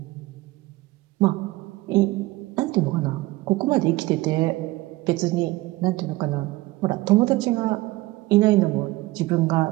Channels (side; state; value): left; quieter; 19.5 dB